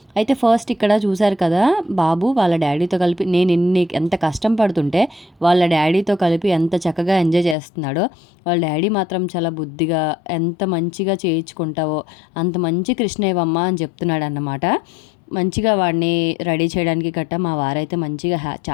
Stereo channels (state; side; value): drops out; right; at 7.6 s